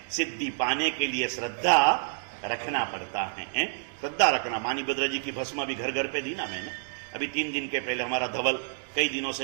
सिद्धि पाने के लिए श्रद्धा रखना पड़ता है। श्रद्धा रखना। मानी भद्रा जी की भस्म भी घर घर पे दी ना मैंने। अभी 3 दिन के पहले हमारा धवल कई दिनों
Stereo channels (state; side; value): silent; left; digital silence